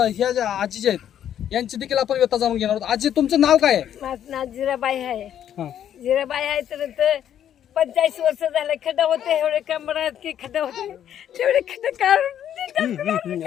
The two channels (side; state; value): right; quieter; 10.2 dB